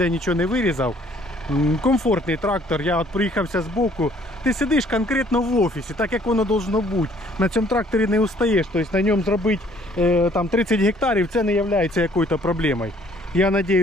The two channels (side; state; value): both; normal; correlation 0.60